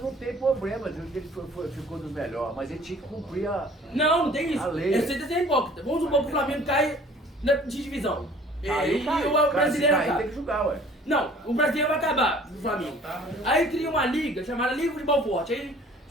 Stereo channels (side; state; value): both; normal; correlation 0.51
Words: tem problema, ele ficou dos melhores, mas ele tinha que cumprir a. Não tem isso. A lei. Você tá sendo hipócrita. Vamos supor que o Flamengo cai de divisão. Aí E o brasileiro tem acaba. que jogar, ué. Não, o brasileiro vai acabar do Flamengo. Aí cria uma liga chamada Liga de Futebol Forte. Aí